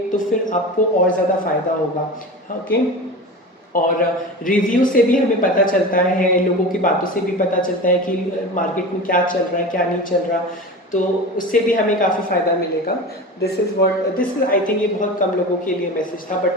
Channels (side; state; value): both; normal; correlation 0.30